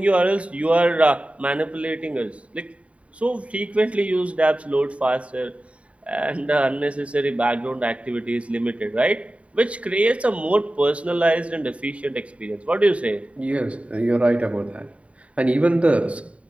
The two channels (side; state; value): left; late; 0.065 ms